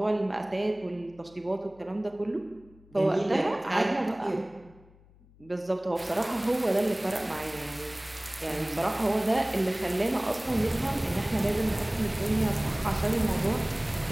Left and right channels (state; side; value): noise; left; hum, 26 dB below the sound